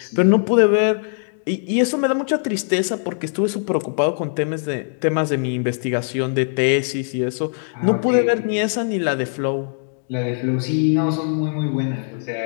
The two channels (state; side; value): silent; right; digital silence